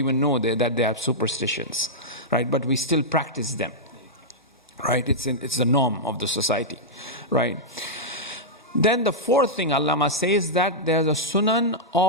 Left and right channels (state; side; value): normal; both; correlation -0.09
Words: know that they are superstitions, right? But we still practice them, right? It's the norm of the society, right? Then the fourth thing Allama says that there's a sunan